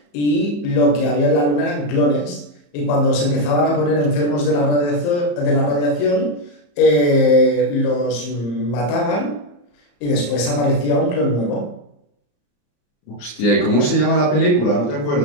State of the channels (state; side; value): late; right; 34 ms